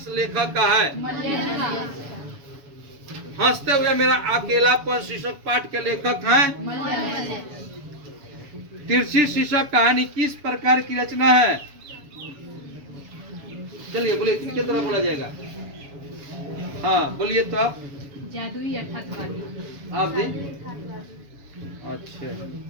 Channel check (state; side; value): late; left; 7.1 ms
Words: लेखक का है? हंसते हुए मेरा अकेलापन शीर्षक पाठ के लेखक हैं? तिरछी शीर्षक कहानी किस प्रकार की रचना है? चलिए बोलिए, किनके तरफ बोला जाएगा? हाँ बोलिए तो आप। जादुई यथार्थवादी। आप जी? अच्छा,